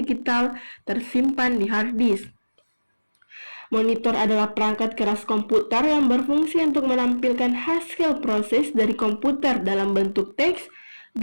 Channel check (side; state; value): both; inverted; correlation -1.00